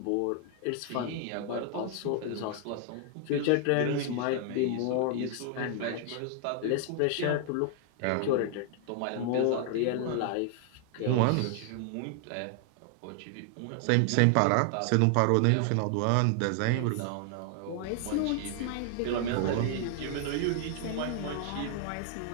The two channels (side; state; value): both; different; correlation 0.00